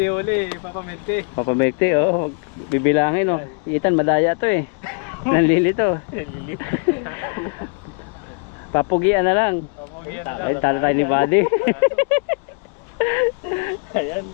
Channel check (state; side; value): quieter; right; 37.0 dB